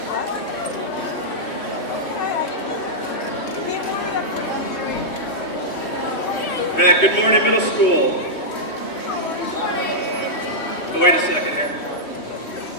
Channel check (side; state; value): right; late; 3.2 ms